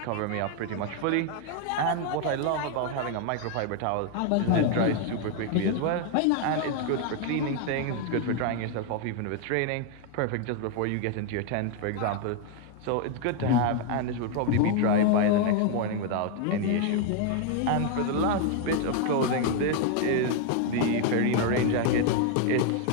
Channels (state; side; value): different; both; correlation 0.00